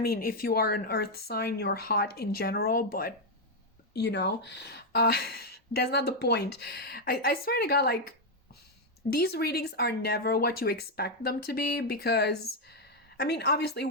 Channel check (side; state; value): both; normal; correlation 0.01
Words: if you are an earth sign, you're hot in general, but that's not the point. I swear to God, like, these readings are never what you expect them to be, because, I mean, obviously